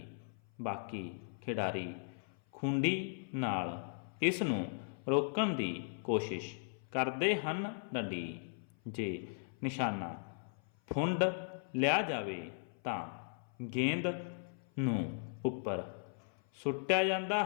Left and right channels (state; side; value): silent; right; 53 dB below the other